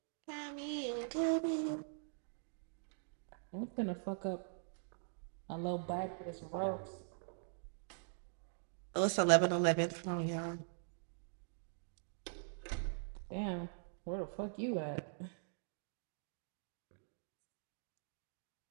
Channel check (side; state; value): left; silent; digital silence